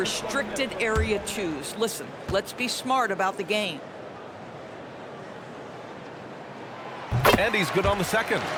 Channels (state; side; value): identical; both; correlation 1.00